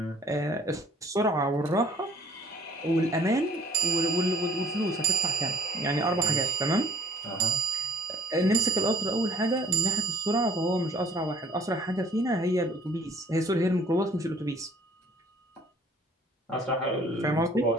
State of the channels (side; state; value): both; normal; correlation 0.58